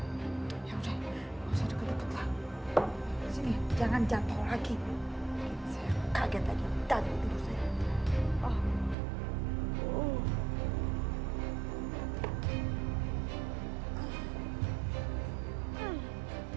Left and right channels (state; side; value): drops out; left; at 9.0 s